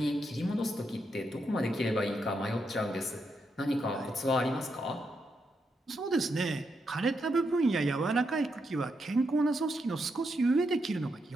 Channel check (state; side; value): normal; both; correlation 0.82